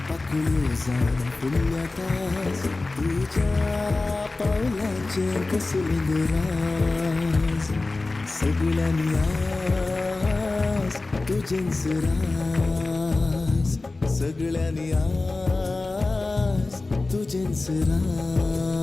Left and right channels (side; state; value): right; quieter; 3.3 dB